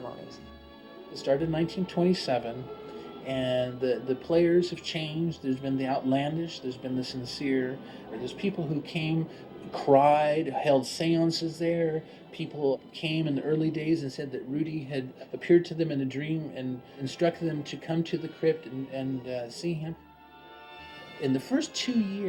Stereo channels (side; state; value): both; identical; correlation 1.00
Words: It started in 1927, and the players have changed. There's been the outlandish, there's been the sincere. There's people who came, cried, held seances there. People came in the early days and said that Rudy had appeared to them in a dream and instructed them to come to the crypt and see him. In the first 2